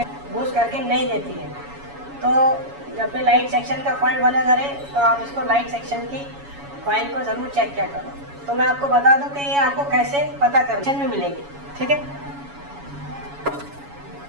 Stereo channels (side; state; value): left; late; 7.1 ms